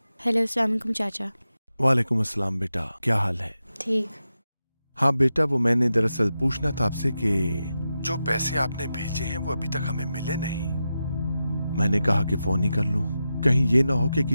हेलो, अस्सलाम वालेकुम चाचा। वालेकुम अस्सलाम बेटा, क्या हाल है? ठीक। हाँ बेटा, वो मैंने दरअसल पूछना था आपसे कि जो पैसे आपने भेजे हैं वो अभी तक हमें मिले नहीं। मैंने कहा कि फोन ही कर लूं, कहीं ये ना हो कि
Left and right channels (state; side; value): inverted; both; correlation -0.90